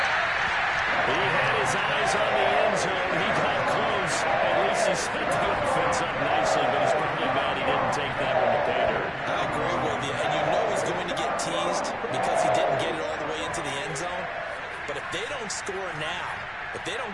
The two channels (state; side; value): identical; both; correlation 1.00